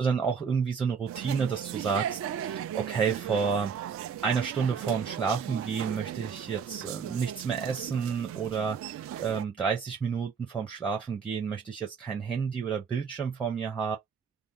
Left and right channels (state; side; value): quieter; left; 6.1 dB